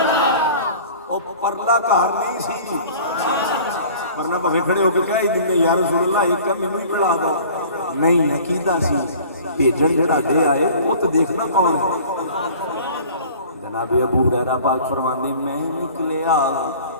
او پرلا گھر نہیں سی, ورنہ بھویں کھڑے ہو کے کہہ ہی دیں یا رسول اللہ ایک کا مینوں ہی پڑھا دو. نہیں عقیدہ سی بھیجن جڑا دے آئے وہ تو دیکھنا کون ہے. جناب ابو ہریرہ پاک فرماندے میں نکلیا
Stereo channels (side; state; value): both; inverted; correlation -0.46